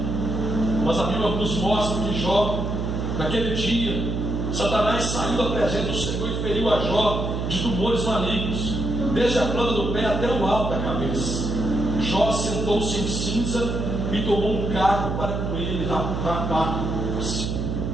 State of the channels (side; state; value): right; noise; hum, 2 dB below the sound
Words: Mas a Bíblia nos mostra que Jó, naquele dia, Satanás saiu da presença do Senhor e feriu a Jó de tumores malignos, desde a planta do pé até o alto da cabeça. Jó sentou-se em cinza e tomou um carro para com ele rapar-se.